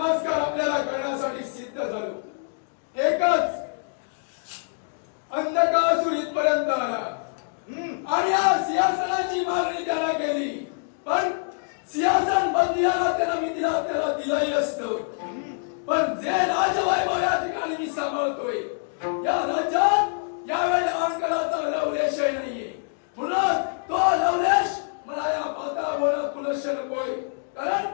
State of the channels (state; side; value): silent; right; digital silence